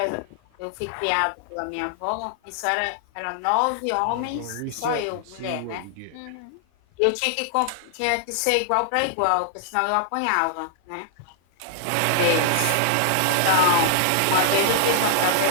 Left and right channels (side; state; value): both; different; correlation -0.01